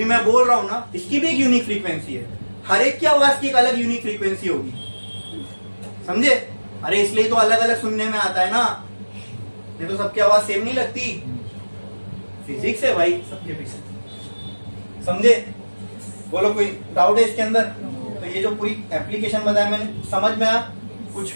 मैं बोल रहा हूं ना, इसकी भी एक यूनिक फ्रीक्वेंसी है, हर एक की आवाज की एक अलग यूनिक फ्रीक्वेंसी होगी, समझे? अरे इसलिए तो अलग अलग सुनने में आता है ना, ये तो सबकी आवाज सेम नहीं लगती, फिजिक्स है भाई सबके पीछे, समझे? बोलो कोई डाउट है इसके अंदर? तो ये जो पूरी एप्लीकेशन बताया मैंने, समझ में आया? कुछ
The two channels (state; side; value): inverted; both; correlation -1.00